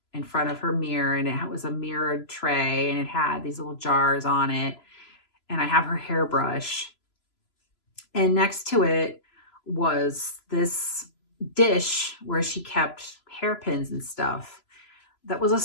in front of her mirror, and it was a mirrored tray, and it had these little jars on it, and I have her hairbrush, and next to it was this dish where she kept hairpins and stuff that was a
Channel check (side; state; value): right; late; 3.0 ms